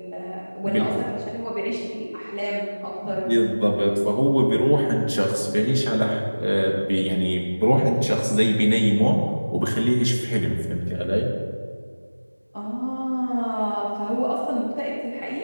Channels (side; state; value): both; inverted; correlation -1.00